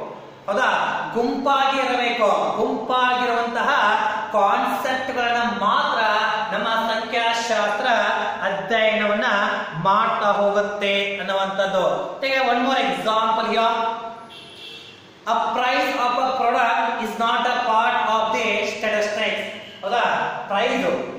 ಹೌದಾ? ಗುಂಪಾಗಿ ಇರಬೇಕು. ಗುಂಪಾಗಿರುವಂತಹ ಕಾನ್ಸೆಪ್ಟ್ ಗಳನ್ನ ಮಾತ್ರ ನಮ್ಮ ಸಂಖ್ಯಾಶಾಸ್ತ್ರ ಅಧ್ಯಯನವನ್ನ ಮಾಡ್ತಾ ಹೋಗುತ್ತೆ ಅನ್ನುವಂಥದ್ದು. One more example here. A price of a product is not a part of the statistics. ಹೌದಾ? ಪ್ರೈಸ್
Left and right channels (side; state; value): both; identical; correlation 1.00